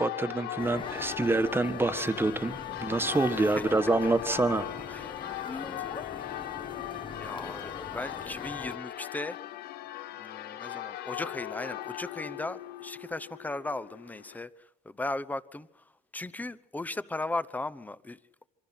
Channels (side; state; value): both; normal; correlation 0.68